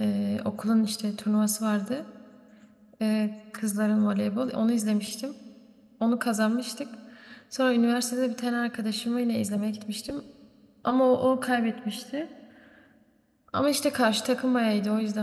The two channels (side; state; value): both; identical; correlation 1.00